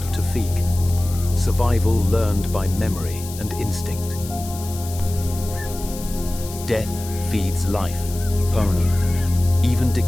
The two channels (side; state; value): left; noise; hiss, 13 dB below the sound